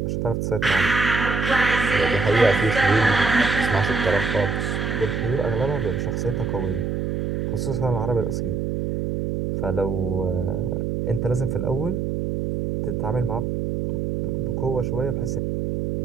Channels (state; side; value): noise; right; hum, 1 dB below the sound